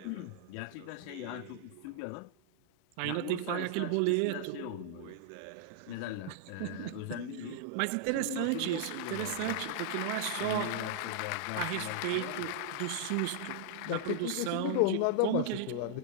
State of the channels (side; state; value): both; different; correlation -0.01